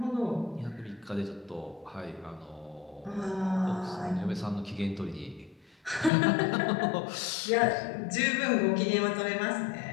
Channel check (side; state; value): right; drops out; at 6.1 s